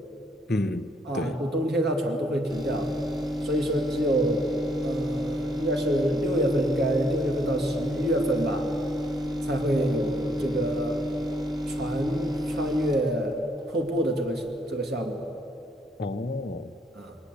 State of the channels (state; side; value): normal; both; correlation 0.70